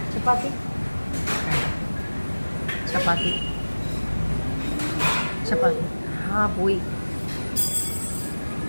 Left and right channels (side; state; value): both; inverted; correlation -1.00